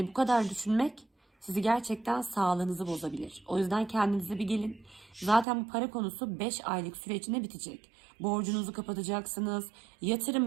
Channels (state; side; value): drops out; left; at 5.5 s